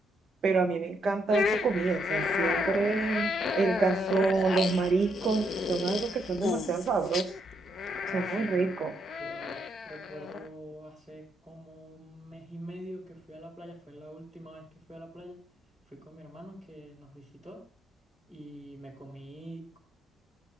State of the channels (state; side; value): normal; both; correlation 0.77